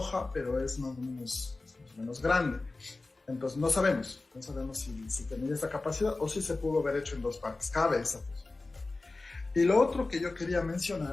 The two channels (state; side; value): quieter; right; 3.4 dB